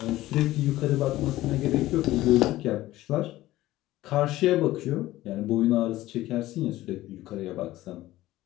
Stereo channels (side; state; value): right; quieter; 16.2 dB